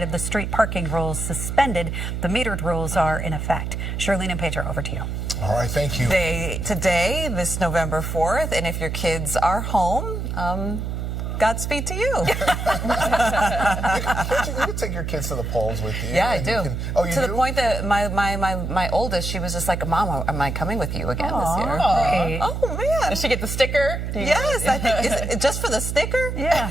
of the street parking rules suspended. The metered rules are in effect. Charlene and Pedro, over to you. All right, thank you. Today, this November 4th, and if your kids are home, Godspeed to you. You can take your kids to the polls with you. Yeah, I do. You to do? the point that my oldest, she was just like, Mom, am I coming with you again this year? Great. Oh, man. Does she get the sticker? Yes, I think. Is it just for the sticker? Yeah.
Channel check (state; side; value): noise; right; hum, 3 dB below the sound